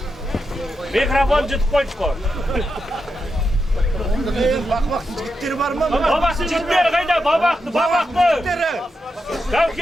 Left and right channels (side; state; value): both; normal; correlation 0.86